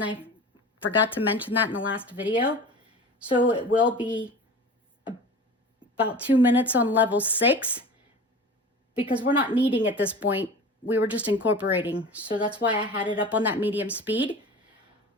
I forgot to mention that in the last video. So it will be about 2 minutes on level 6, because we're not kneading at this point. We were just incorporating. So that's why I had it up on that medium speed.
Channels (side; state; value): both; normal; correlation 0.36